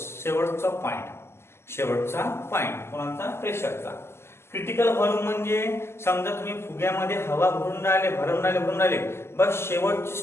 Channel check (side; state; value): right; late; 0.12 ms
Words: पॉइंट कोणाचा? प्रेशरचा. क्रिटिकल व्हॉल्यूम म्हणजे समजा तुम्ही फुग्यामध्ये हवा भरून राहिले बस शेवटची